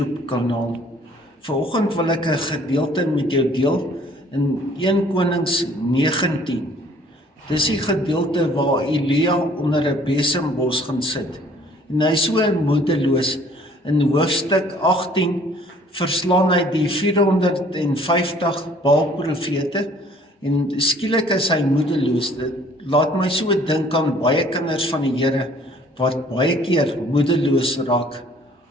kanaal. Vanoggend wil ek 'n gedeelte met jou deel in 1 Konings 19. Dis die gedeelte waar Elia onder 'n besembos gaan sit. En hy is so moedeloos. In hoofstuk 18 verslaan hy die 450 Baal-profete. En skielik is hy moedeloos. Dit laat my so dink aan baie kinders van die Here wat baie keer moedeloos raak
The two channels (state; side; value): normal; both; correlation 0.56